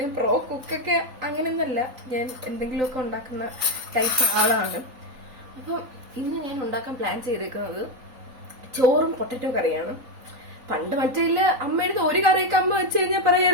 പ്രോ കുക്കൊക്കെ അങ്ങനെയൊന്നല്ല, ഞാൻ എന്തെങ്കിലുമൊക്കെ ഉണ്ടാക്കുന്ന ടൈപ്പ് ആളാണ്. അപ്പം ഇന്ന് ഞാൻ ഉണ്ടാക്കാൻ പ്ലാൻ ചെയ്തേക്കുന്നത് ചോറും പൊട്ടറ്റോ കറിയാണ്. പണ്ട് മറ്റേ അമ്മയുടെ ഒരു കറിയൊക്കെ അമ്മ വെച്ച് കഴിഞ്ഞാൽ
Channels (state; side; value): late; left; 3.9 ms